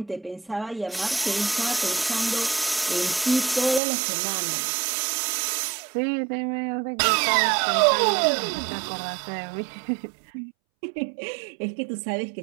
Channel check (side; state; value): left; drops out; at 3.8 s